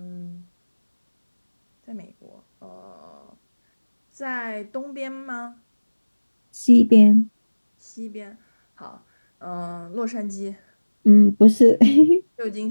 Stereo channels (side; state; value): both; inverted; correlation -1.00